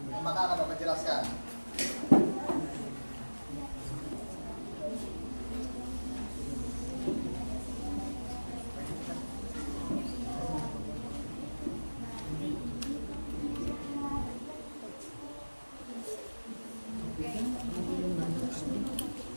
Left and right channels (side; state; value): both; inverted; correlation -1.00